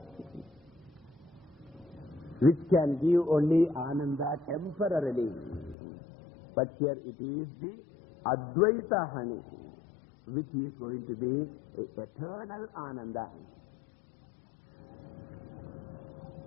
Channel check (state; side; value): drops out; right; at 5.8 s